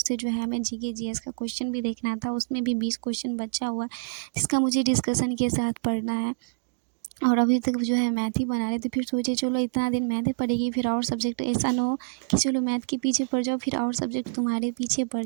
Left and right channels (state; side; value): silent; left; digital silence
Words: जो है हमें जीके जीएस का क्वेश्चन भी देखना था। उसमें भी 20 क्वेश्चन बचा हुआ जिसका मुझे डिस्कशन के साथ पढ़ना है। और अभी तक जो है मैथ ही बना रहे थे। फिर सोचे चलो इतना दिन मैथ ही पढ़ेगी, फिर और सब्जेक्ट ऐसा ना हो कि चलो मैथ के पीछे पड़ जाओ फिर और सब्जेक्ट तुम्हारे पीछे पड़